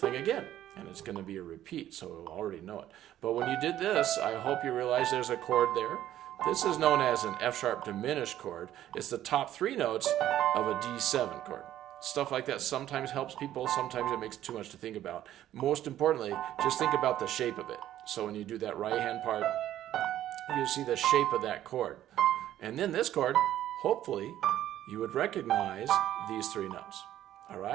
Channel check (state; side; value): quieter; left; 12.5 dB